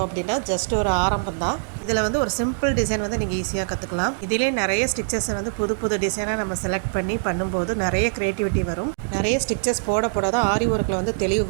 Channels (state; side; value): silent; left; digital silence